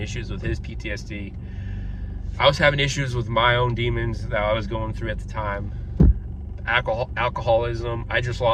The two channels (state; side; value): identical; both; correlation 1.00